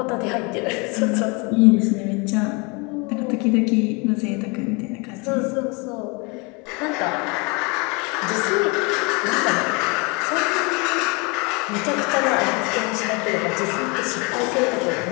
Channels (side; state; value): right; quieter; 29.6 dB